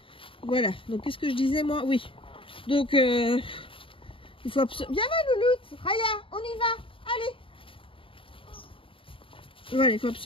Voilà, donc qu'est-ce que je disais moi? Oui. Donc, il faut absolument... Viens là, Louloute. Raya, on y va. Allez. Voilà, il faut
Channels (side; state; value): right; late; 0.26 ms